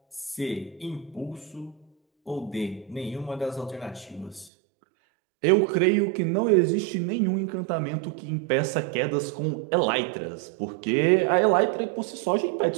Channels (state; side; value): drops out; left; at 4.5 s